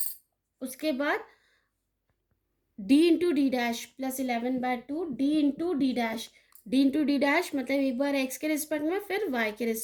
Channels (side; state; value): both; identical; correlation 1.00